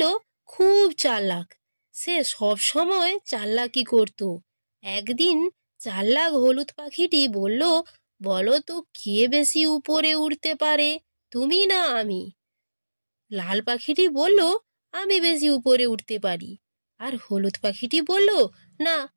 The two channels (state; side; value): inverted; both; correlation -1.00